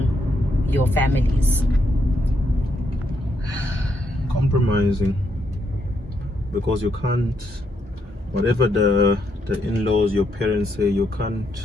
your families? Compromising, because you can't, whatever the in-laws, your parents say, you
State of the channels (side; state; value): both; normal; correlation 0.77